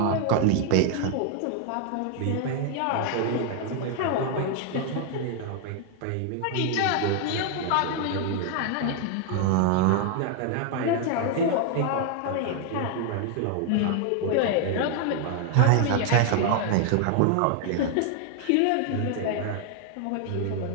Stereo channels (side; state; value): both; different; correlation 0.00